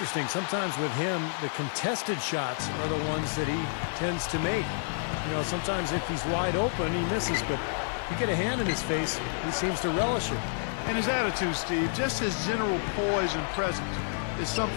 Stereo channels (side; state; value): right; silent; digital silence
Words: Sometimes with him, the contested shots are the ones that he tends to make. You know, sometimes if he's wide open, he misses. But you get a hand in his face, he seems to relish it. And his attitude, Steve, just his general poise and presence is